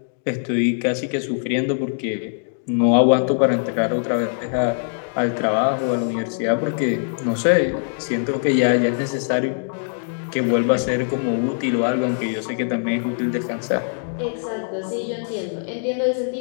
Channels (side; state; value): right; silent; digital silence